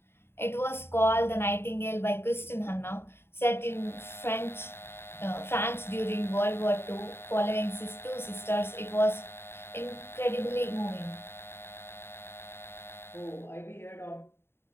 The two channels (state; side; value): late; right; 0.11 ms